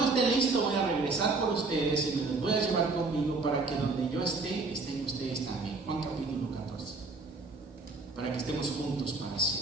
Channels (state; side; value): quieter; left; 3.7 dB